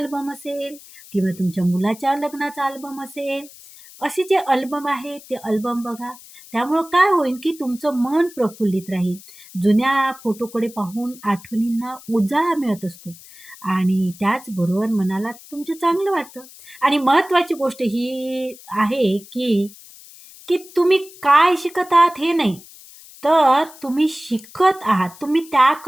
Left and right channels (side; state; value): left; noise; hiss, 20 dB below the sound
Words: असेल किंवा तुमच्या मुलाच्या लग्नाचा अल्बम असेल. असे जे अल्बम आहे ते अल्बम बघा. त्यामुळं काय होईल की तुमचं मन प्रफुल्लित राहील. जुन्या फोटोकडे पाहून आठवणींना उजाळा मिळत असतो आणि त्याचबरोबर मनाला तुमचं चांगलं वाटतं. आणि महत्त्वाची गोष्ट ही आहे की की तुम्ही काय शिकत आहात हे नाही, तर तुम्ही शिकत आहात. तुम्ही